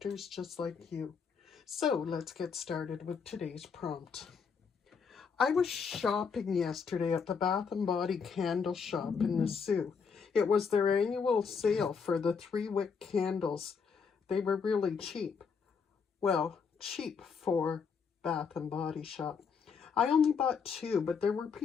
just like you. So let's get started with today's prompt. I was shopping yesterday at the Bath & Body candle shop in the Sioux. It was their annual sale for the 3-wick candles. They were really cheap. Well, cheap for Bath & Body shop. I only bought 2, but there were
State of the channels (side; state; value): right; quieter; 5.9 dB